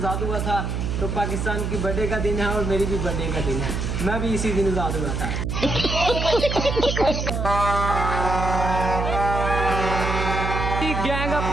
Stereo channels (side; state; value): right; noise; hum, 2 dB below the sound